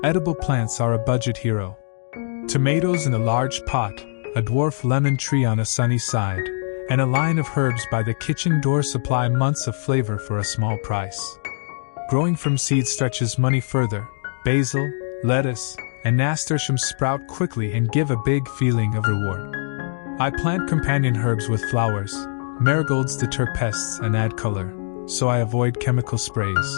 Edible plants are a budget hero. Tomatoes in a large pot, a dwarf lemon tree on a sunny side, and a line of herbs by the kitchen door supply months of flavor for a small price. Growing from seed stretches money further. Basil, lettuce, and nasturtium sprout quickly and give a big feeling of reward. I plant companion herbs with flowers. Marigolds deter pests and add color, so I avoid chemical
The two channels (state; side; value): silent; right; digital silence